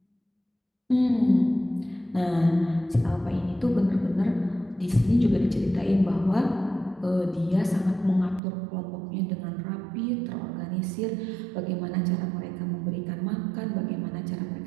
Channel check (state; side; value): drops out; left; at 8.4 s